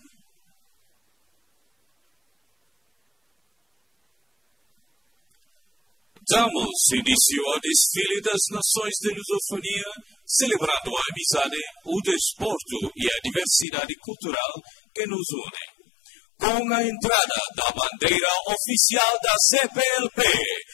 Damos início ao desfile das nações de lusofonia, celebrando a amizade, o desporto e a diversidade cultural que nos unem. Com a entrada da bandeira oficial da CPLP,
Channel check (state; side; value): drops out; right; at 13.7 s